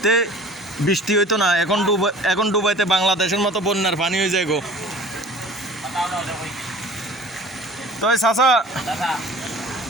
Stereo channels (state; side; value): normal; both; correlation 0.44